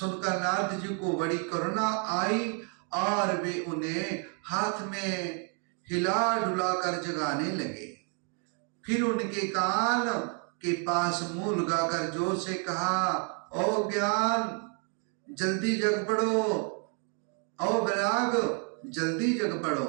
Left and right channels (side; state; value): left; quieter; 40.0 dB